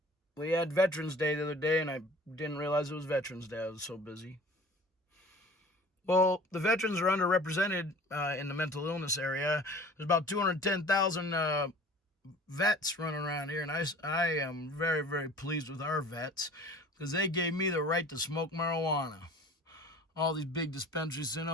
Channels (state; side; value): normal; both; correlation 0.45